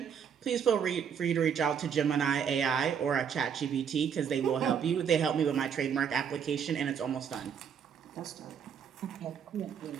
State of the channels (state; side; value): quieter; left; 7.5 dB